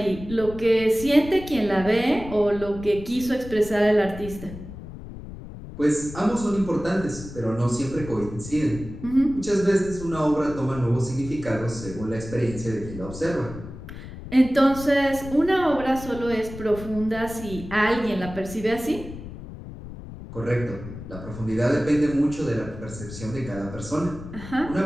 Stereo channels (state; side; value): noise; left; rumble, 12 dB below the sound